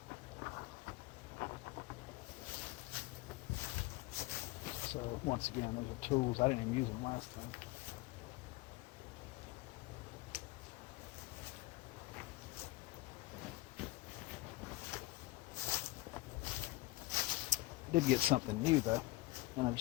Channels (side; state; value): right; quieter; 19.3 dB